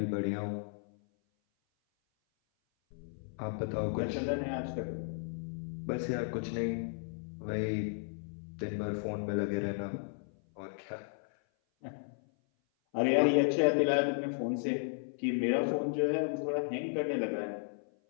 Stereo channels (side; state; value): right; silent; 55 dB below the other